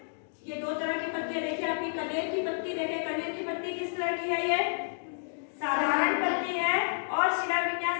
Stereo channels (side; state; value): right; silent; digital silence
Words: ये दो तरह की पत्तियां देखिए। आपकी कनेर की पत्ती देखें, कनेर की पत्ती किस तरह की है? ये साधारण पत्ती है और शिरा